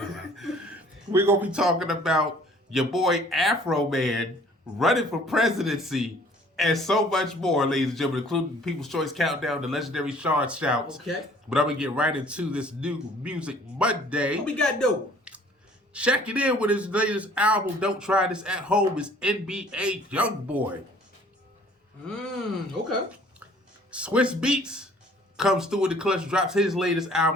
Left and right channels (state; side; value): normal; both; correlation 0.55